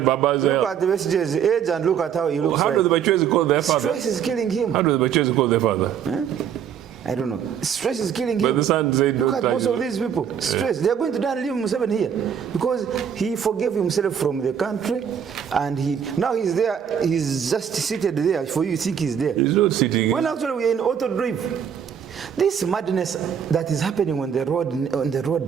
Baba's health." Look at the messages, age, and look at how he looks. How do the Bachwezi call their father? Stress is killing him. How do the Bachwezi call their father? I don't know. Stress is killing him. But the son said, look at most of these people. Stress. They are going to die and leave Museveni here because he forgave himself from the country, and now he's there. He's just seated there for you. Think he's there? He's not sitting. When actually we are in auto drive. This madness that is happening on the road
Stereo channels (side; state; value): left; quieter; 8.2 dB